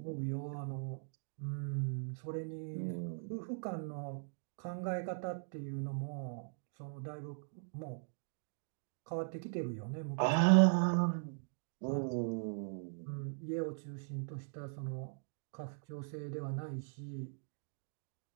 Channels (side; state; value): left; silent; digital silence